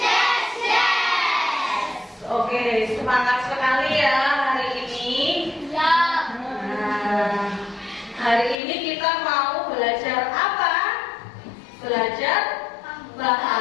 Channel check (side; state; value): right; drops out; at 8.6 s